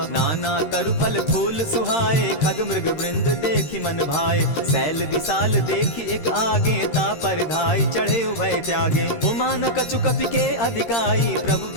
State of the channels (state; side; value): late; right; 13 ms